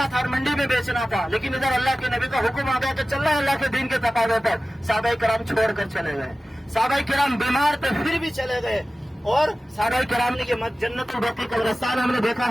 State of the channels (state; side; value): normal; both; correlation 0.96